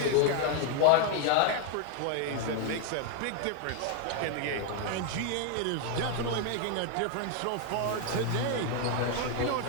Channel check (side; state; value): both; different; correlation 0.00